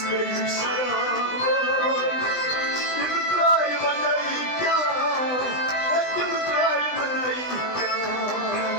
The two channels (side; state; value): right; late; 20 ms